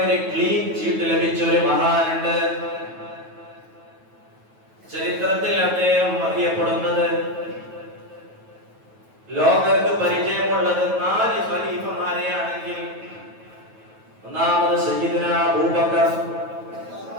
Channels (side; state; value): left; late; 9.2 ms